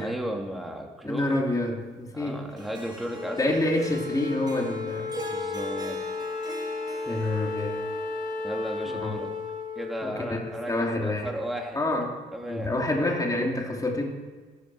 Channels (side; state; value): both; normal; correlation 0.71